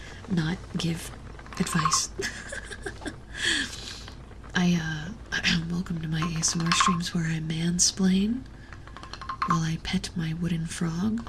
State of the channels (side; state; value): both; identical; correlation 1.00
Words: not give advice. Welcome to my ASMR streams where I mansplain while I pet my wooden frog